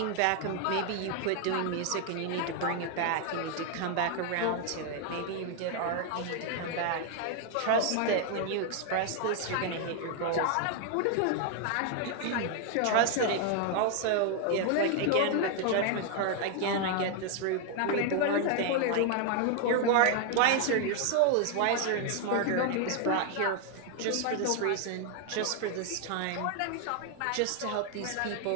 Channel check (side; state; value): both; different; correlation 0.01